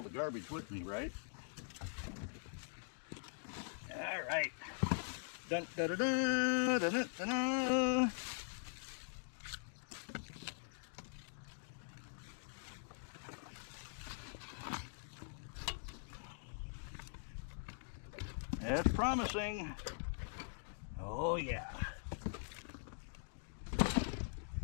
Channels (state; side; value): silent; right; digital silence